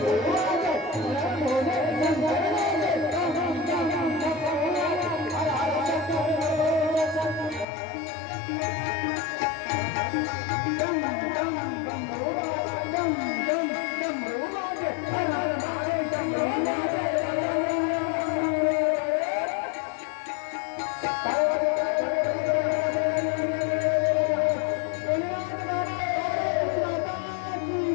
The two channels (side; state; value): right; drops out; at 7.7 s